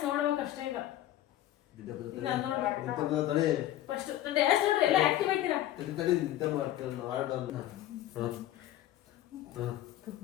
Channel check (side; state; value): right; quieter; 13.4 dB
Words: ನೋಡ್ಬೇಕಷ್ಟೇ ಈಗ. ಫಸ್ಟ್ ನಾನು ಡ್ಯಾನ್ಸ್ ನೋಡ್ರಿ ಎಲ್ಲ ಆಕ್ಟಿವ್ ಆಯ್ತೀರಾ? ನಿದ್ದೆ ಮಾಡ್ತಾರೆ